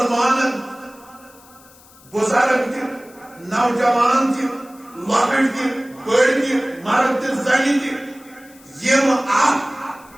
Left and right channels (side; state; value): left; noise; hiss, 25 dB below the sound